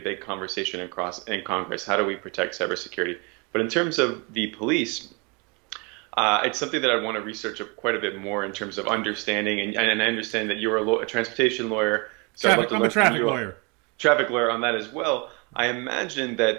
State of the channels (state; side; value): quieter; left; 30.9 dB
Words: big conversation in Congress. How do we protect cybersecurity? But in terms of the police, it's something that I want to research quite a bit more in terms of understanding. And I understand that you're a transportation lawyer. So I'm a traffic lawyer. Traffic lawyer on that as well. I imagine